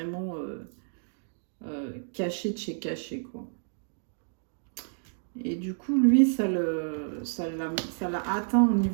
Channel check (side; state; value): left; silent; digital silence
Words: caché de chez caché, quoi. Et du coup, lui, ça l'a atteint au